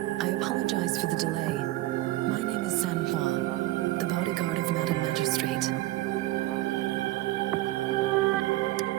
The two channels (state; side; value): quieter; left; 17.4 dB